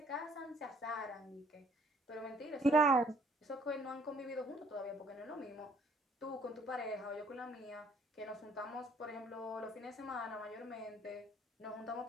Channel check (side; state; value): both; normal; correlation 0.61